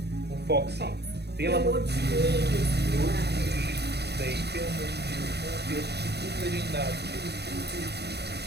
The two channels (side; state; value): left; late; 0.48 ms